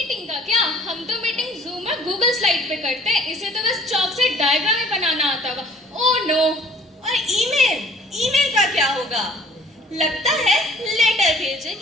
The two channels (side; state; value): both; normal; correlation 0.54